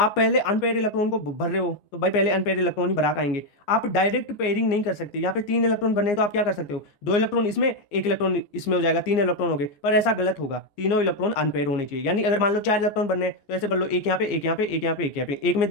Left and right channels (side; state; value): right; late; 14 ms